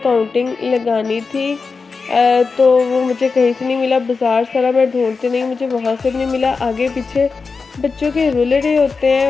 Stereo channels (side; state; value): right; quieter; 4.6 dB